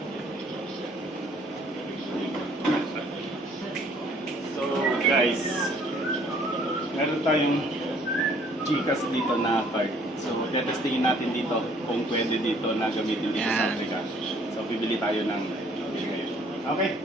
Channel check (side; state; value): both; normal; correlation 0.60